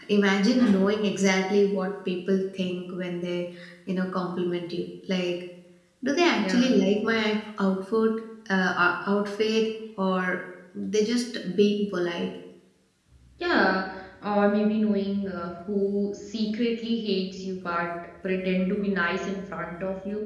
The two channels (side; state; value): both; identical; correlation 1.00